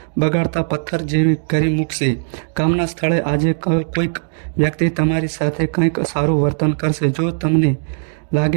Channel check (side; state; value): left; silent; digital silence